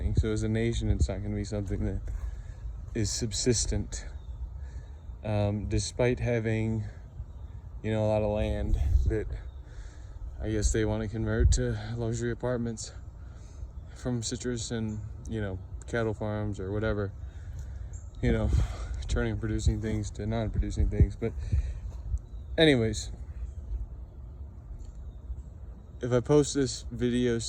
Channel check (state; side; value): identical; both; correlation 1.00